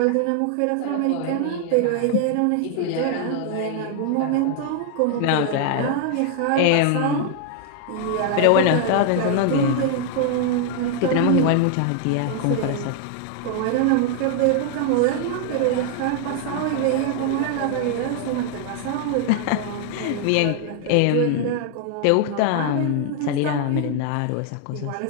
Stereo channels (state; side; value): different; both; correlation 0.00